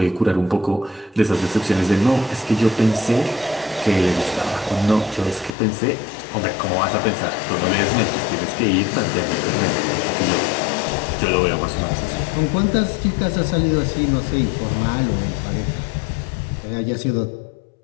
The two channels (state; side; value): drops out; right; at 5.5 s